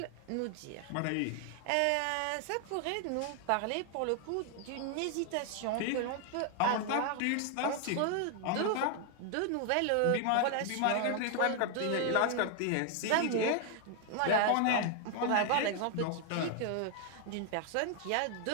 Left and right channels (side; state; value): both; different; correlation 0.00